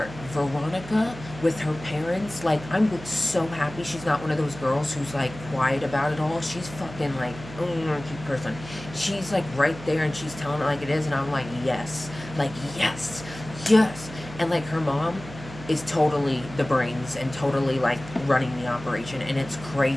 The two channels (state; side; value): noise; right; hum, 14 dB below the sound